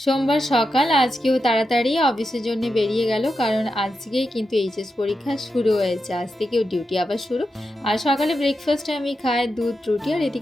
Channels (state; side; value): normal; both; correlation 0.88